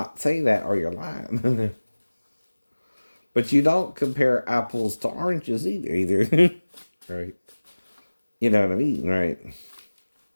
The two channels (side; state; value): both; inverted; correlation -1.00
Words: say that or you're lying. But you don't compare apples to oranges either. Right? You know what I mean, right?